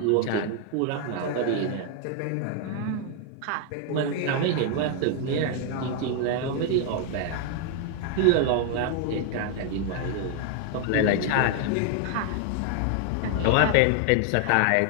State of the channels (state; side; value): different; both; correlation 0.00